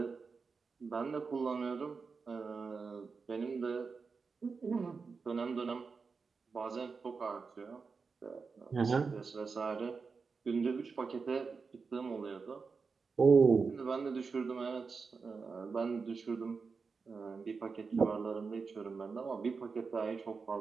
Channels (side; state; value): left; quieter; 4.9 dB